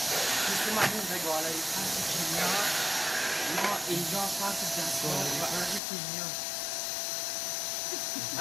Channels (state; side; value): drops out; right; at 5.8 s